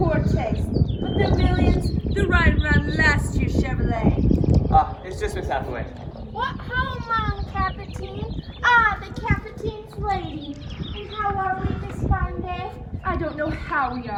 taste, but their millions, they're riding around last year's Chevrolet. It's just Miss Hathaway. What home, Mom, Captain? Ah, the Captain's lady. And how are we this fine day? I don't know how we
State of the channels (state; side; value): identical; both; correlation 1.00